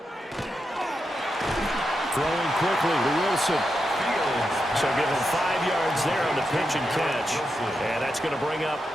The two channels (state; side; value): normal; both; correlation 0.86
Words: quickly to Wilson. So give him 5 yards there on the pitch and catch. And that's going to bring up